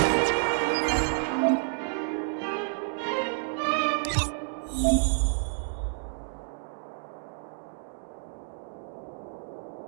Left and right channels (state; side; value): silent; left; digital silence